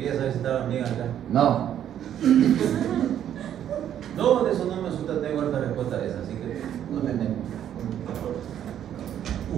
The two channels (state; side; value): quieter; left; 10.3 dB